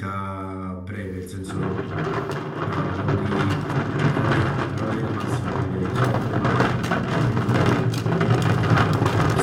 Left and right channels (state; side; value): identical; both; correlation 1.00